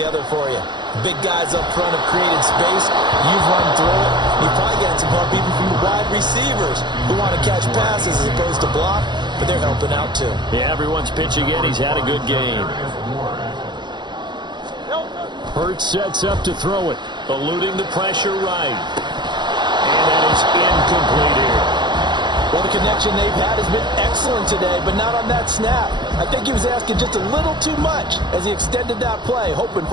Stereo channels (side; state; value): left; late; 0.22 ms